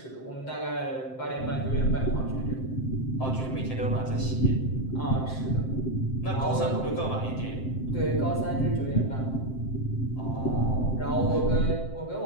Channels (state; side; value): late; right; 7.7 ms